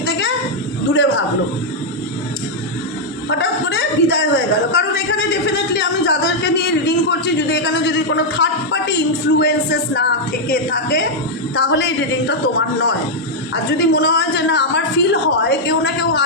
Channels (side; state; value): both; normal; correlation -0.03